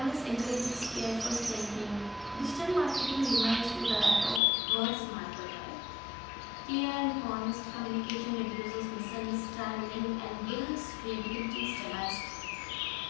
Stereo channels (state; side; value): drops out; right; at 4.4 s